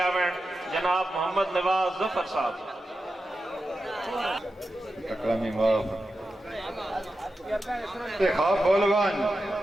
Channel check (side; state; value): both; normal; correlation 0.91